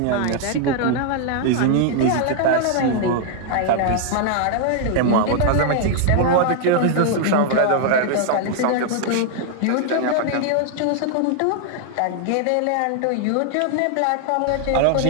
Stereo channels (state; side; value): different; both; correlation 0.00